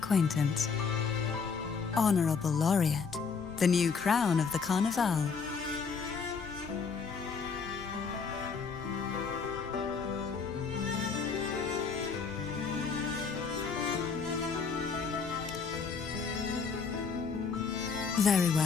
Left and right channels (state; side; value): quieter; right; 5.5 dB